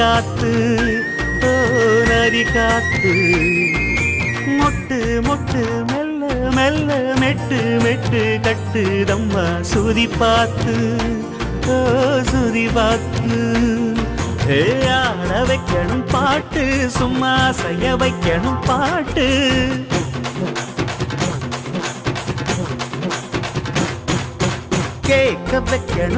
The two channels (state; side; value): identical; both; correlation 1.00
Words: ஓ நதி காத்து. மொட்டு மொட்டு மெல்ல மெல்ல மெட்டு மெட்டு கட்டுதம்மா சுதி பார்த்து, ஓ சுதி பார்த்து. ஆட வைக்கணும் பாட்டு, சும்மா செய்ய வைக்கணும் பாட்டு. கேட்க